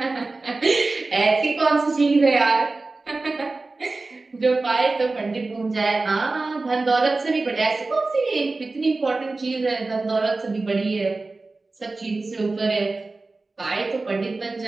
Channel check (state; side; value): quieter; left; 3.5 dB